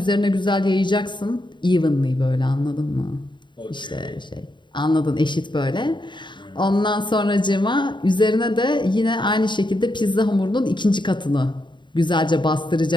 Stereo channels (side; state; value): right; late; 0.23 ms